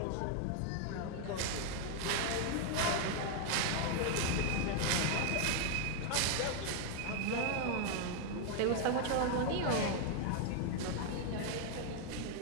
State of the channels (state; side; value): different; both; correlation 0.01